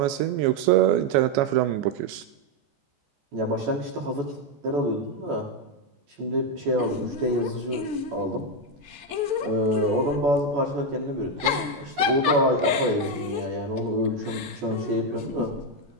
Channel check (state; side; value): late; left; 14 ms